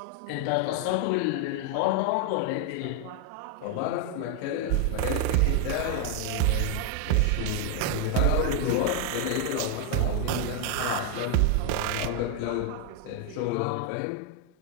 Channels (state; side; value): different; both; correlation 0.00